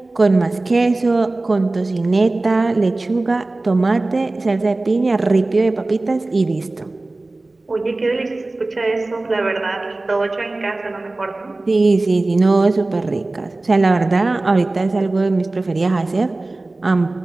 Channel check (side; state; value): left; quieter; 3.0 dB